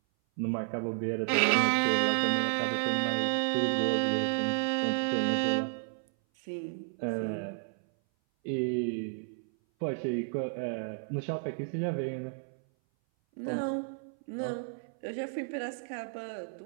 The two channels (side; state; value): left; silent; 57 dB below the other